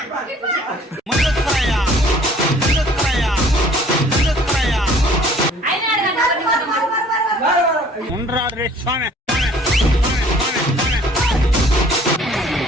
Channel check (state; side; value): normal; both; correlation 0.54